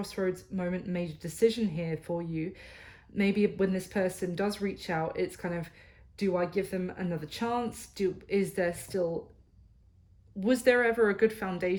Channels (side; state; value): both; identical; correlation 1.00